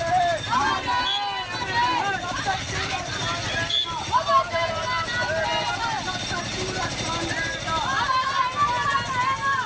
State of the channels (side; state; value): both; identical; correlation 1.00